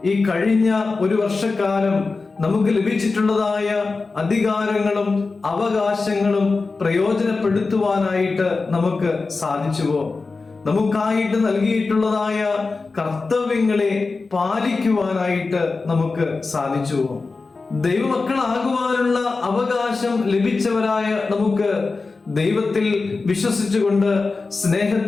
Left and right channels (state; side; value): quieter; right; 4.0 dB